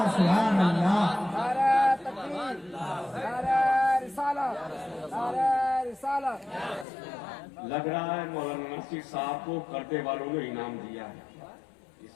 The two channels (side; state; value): right; drops out; at 6.9 s